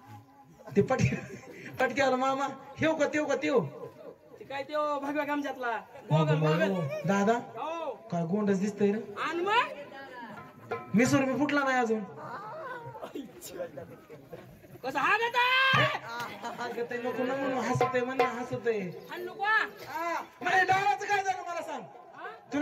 ते पटक्याला मामा ठेव का तेव ते काय त्यो भगव्या गमजातला गोगल दादा हो काय गोंडच दिसतंय रे आणि मग मिसूर मी फुटला नाही अजून कसं हागत नको ना म्हणून हसतय आणू का म्हणजे डावाचं काय झालं मला सांग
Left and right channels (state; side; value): identical; both; correlation 1.00